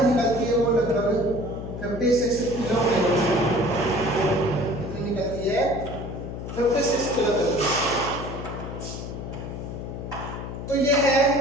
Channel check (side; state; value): left; noise; hum, 8 dB below the sound